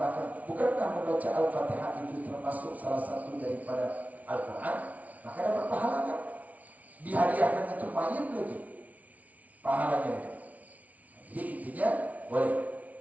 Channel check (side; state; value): left; late; 0.070 ms